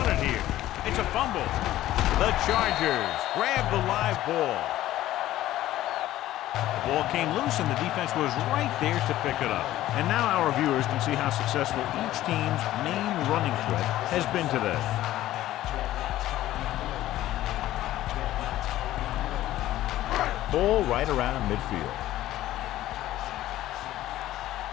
it here. It's a fumble. The Chargers grab the live ball. The ball came loose and the defense was right there to pick it up. And now our viewers can see how successful each team's main running threat has been today. Ball right around midfield.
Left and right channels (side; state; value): right; quieter; 14.5 dB